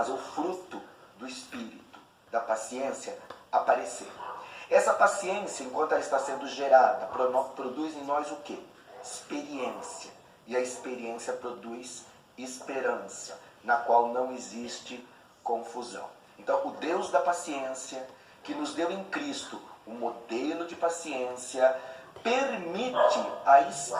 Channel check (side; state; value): both; identical; correlation 1.00